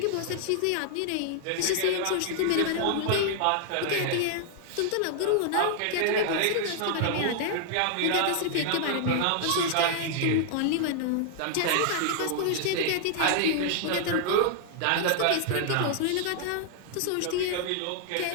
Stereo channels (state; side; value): different; both; correlation 0.00